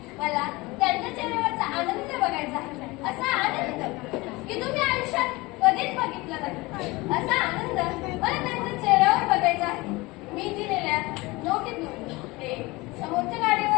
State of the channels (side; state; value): right; quieter; 22.6 dB